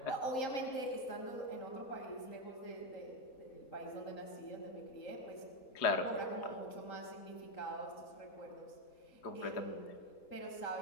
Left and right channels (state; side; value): late; right; 3.8 ms